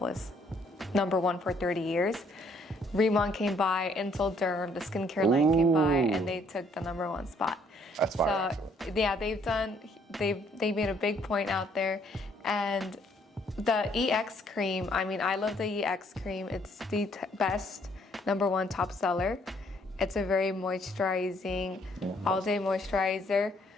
#1 for 30 years. Riman came by, Intel Derm, the skincare line came by, and they took the #1 spot. That's fine. So yeah, they made a big point out there. And the EX cream, I mean, I love the EX cream. It's the best #1 top seller. It's a very moisturizing, all-day moisturizer.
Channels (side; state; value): both; normal; correlation 0.66